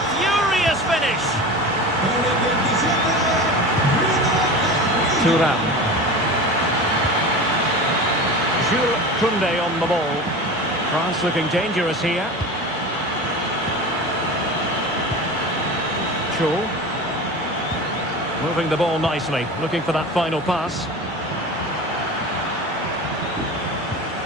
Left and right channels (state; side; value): normal; both; correlation 0.31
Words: furious finish. Thuram. Jules Koundé on the ball. France looking dangerous here. Cho. Moving the ball nicely, looking for that final pass.